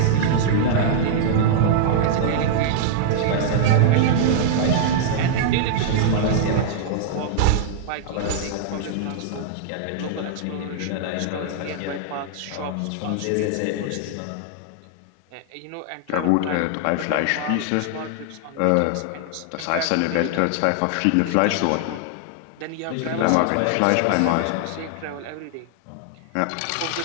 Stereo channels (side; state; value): both; different; correlation -0.01